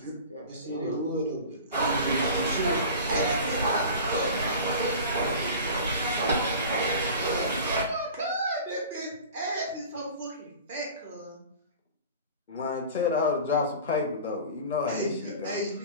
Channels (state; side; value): inverted; both; correlation -0.38